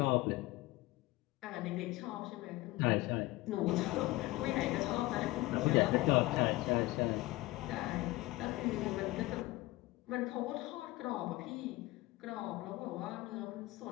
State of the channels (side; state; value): right; quieter; 19.8 dB